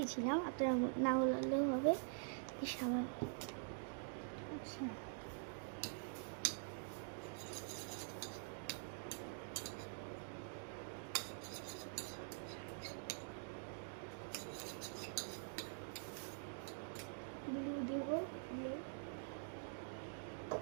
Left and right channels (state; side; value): silent; left; digital silence